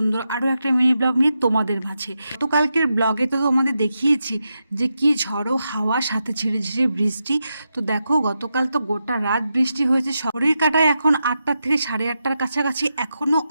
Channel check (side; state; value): both; inverted; correlation -0.87